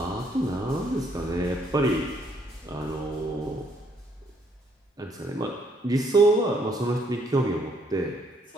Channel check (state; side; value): normal; both; correlation 0.69